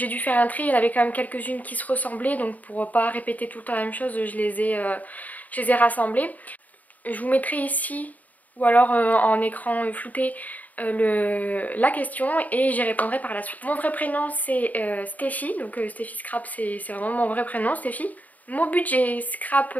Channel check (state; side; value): late; right; 0.076 ms